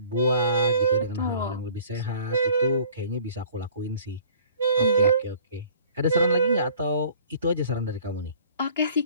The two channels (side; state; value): both; inverted; correlation -0.52